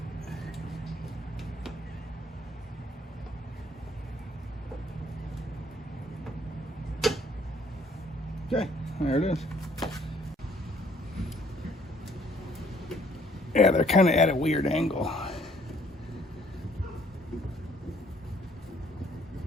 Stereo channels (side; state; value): both; normal; correlation 0.62